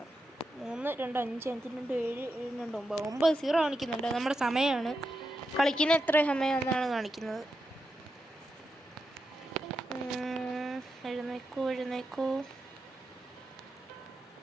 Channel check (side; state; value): both; normal; correlation 0.87